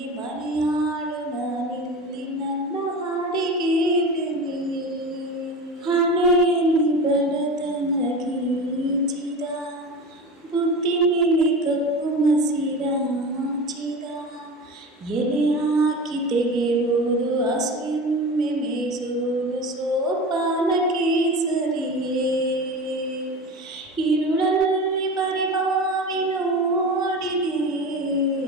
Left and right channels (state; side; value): normal; both; correlation 0.30